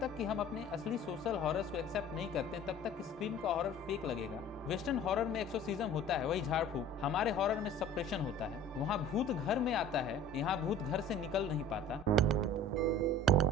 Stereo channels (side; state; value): both; normal; correlation 0.44